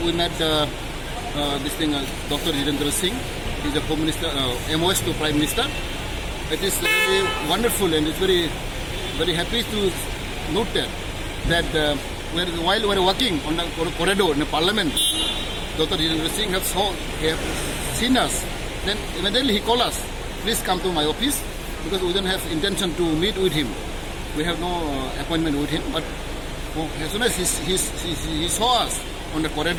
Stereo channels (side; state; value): both; identical; correlation 1.00